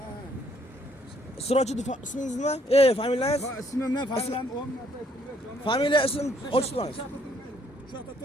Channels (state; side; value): normal; both; correlation 0.67